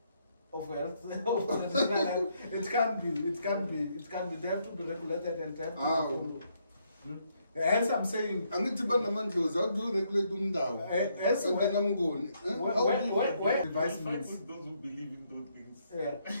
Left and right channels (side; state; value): both; inverted; correlation -0.73